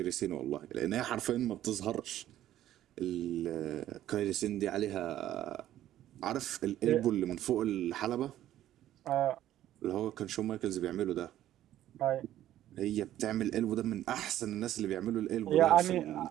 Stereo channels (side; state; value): left; quieter; 12.8 dB